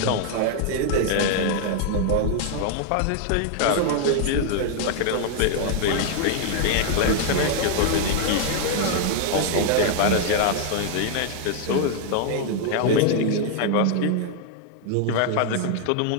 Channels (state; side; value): different; both; correlation 0.00